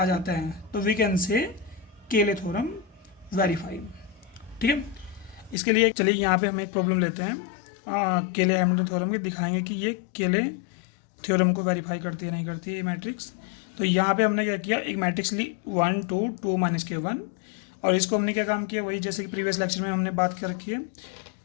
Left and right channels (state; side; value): drops out; right; at 5.6 s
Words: जाता है तो वी कैन से केले थ्योरम वेरीफाई। ठीक है, इसके लिए चलिए यहाँ पे हम एक प्रॉब्लम लेते हैं केले हैमिल्टन थ्योरम की, दिखाएंगे कि ये केले थ्योरम को वेरीफाई करती है नहीं करती है ये मैट्रिक्स। तो यहाँ पे हमने क्या किया, एक मैट्रिक्स ली वन टू टू माइनस के वन, और इसको हमने क्या काम किया, वही जैसे कि प्रीवियस लेक्चर में हमने बात कर रखी है।